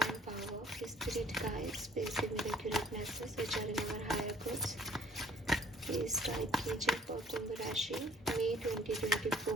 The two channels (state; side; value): normal; both; correlation 0.57